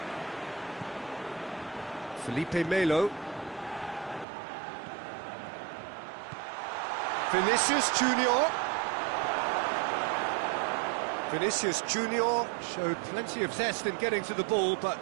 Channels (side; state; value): left; drops out; at 4.2 s